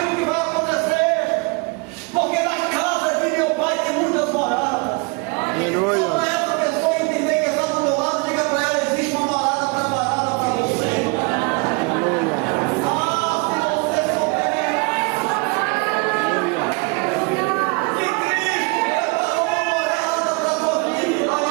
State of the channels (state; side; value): quieter; left; 30.2 dB